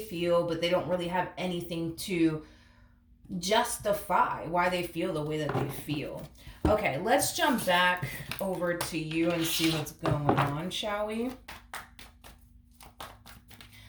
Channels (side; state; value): both; identical; correlation 1.00